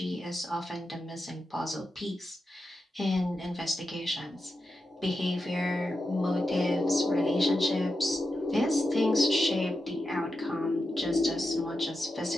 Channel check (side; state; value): both; normal; correlation 0.89